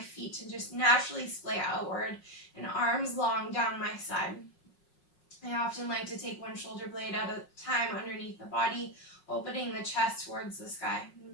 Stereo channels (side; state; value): right; late; 5.5 ms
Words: to just naturally splay outward, and arms long down my side. I often like to take one shoulder blade at a time underneath the body, opening the chest towards the sky.